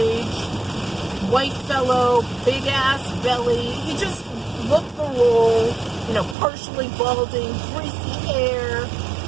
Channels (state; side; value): drops out; left; at 6.4 s